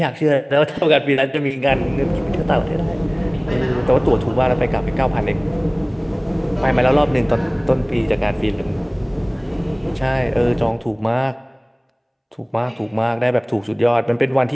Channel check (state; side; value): identical; both; correlation 1.00